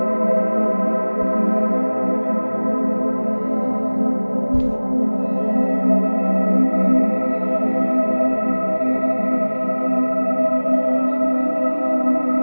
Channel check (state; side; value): inverted; both; correlation -1.00